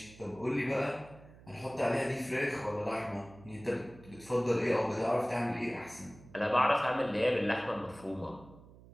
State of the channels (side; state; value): right; noise; hum, 21 dB below the sound